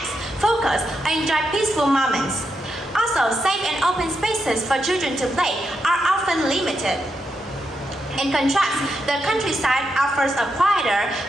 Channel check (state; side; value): normal; both; correlation 0.84